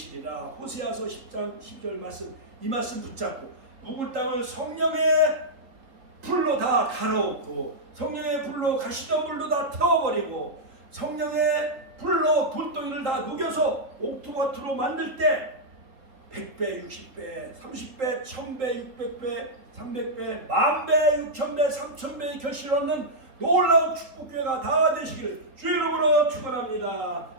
호세아서 10장 12절 말씀, 이 말씀 붙잡고 묵은 땅을 성령의 불로 다 갈아엎고, 성령의 불로 가시덤불로 다 태워버리고, 성령의 불로 돌덩이를 다 녹여서 옥토마토로 만들 때 100배, 60배, 30배, 1000배, 600배, 300배, 10,000배, 6,000배, 3,000배의 결실을 얻는 놀라운 축복교회가 다 되시기를 주 이름으로 축원합니다.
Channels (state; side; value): late; left; 3.8 ms